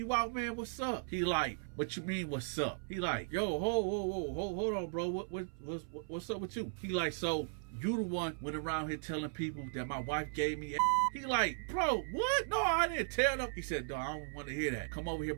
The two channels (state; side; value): silent; left; 53 dB below the other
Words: out, man, what's up? He like, what you mean, what's up? He like, yo, hold on, bro, what's up with you? He like, so you the one went around here telling people that my wife gave me a. He like, bro, what? No, I didn't tell them. He said, no, I don't want to hear that. Come over here